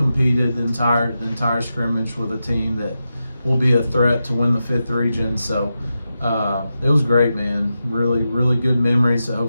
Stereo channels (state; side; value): inverted; both; correlation -0.90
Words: the entire scrimmage with a team that will be a threat to win the 5th region. So it was great, man. Really good memories that